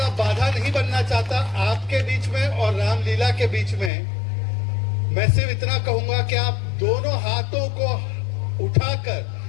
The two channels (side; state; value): right; drops out; at 3.9 s